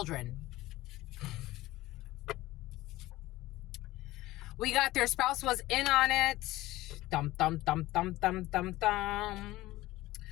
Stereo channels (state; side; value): quieter; right; 17.6 dB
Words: We got their spouse was in on it. Dum, dum, dum, dum, dum, dum, dum.